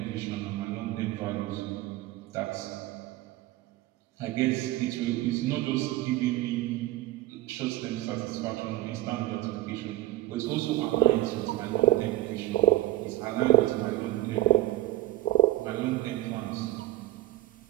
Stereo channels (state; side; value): quieter; left; 15.8 dB